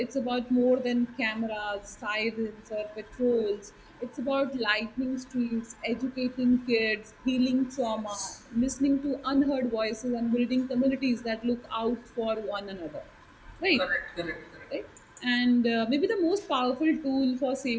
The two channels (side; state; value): both; identical; correlation 1.00